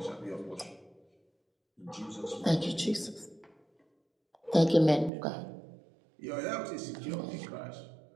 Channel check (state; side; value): drops out; left; at 5.1 s